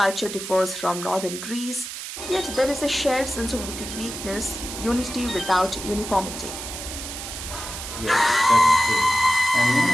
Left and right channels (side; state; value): right; noise; hiss, 8 dB below the sound